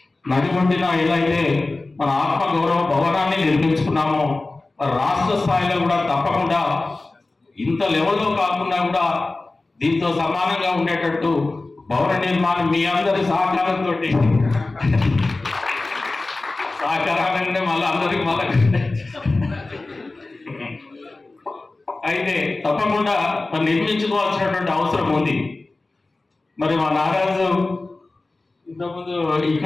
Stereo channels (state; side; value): quieter; right; 3.2 dB